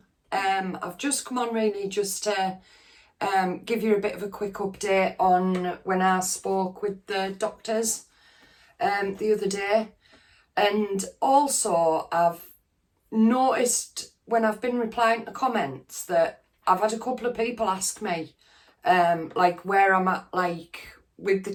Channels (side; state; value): both; identical; correlation 1.00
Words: I've just come on really just to give you a bit of a quick update on when I spoke with the doctors the other day, and also I've noticed when I've been replying to comments that I've had a couple of people ask me like where I'm at like with the